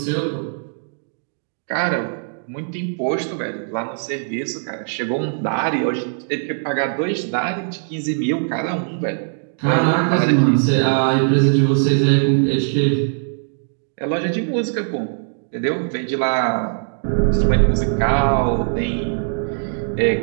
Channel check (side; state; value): left; silent; digital silence